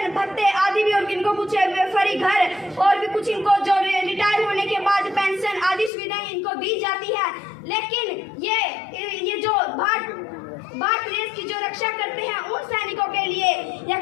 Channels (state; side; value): drops out; right; at 5.9 s